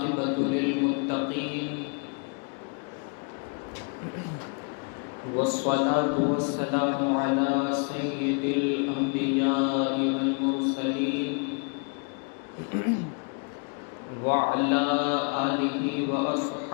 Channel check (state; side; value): quieter; right; 36.2 dB